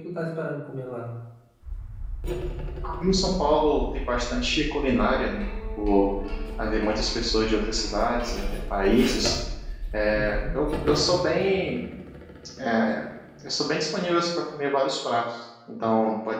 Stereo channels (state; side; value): identical; both; correlation 1.00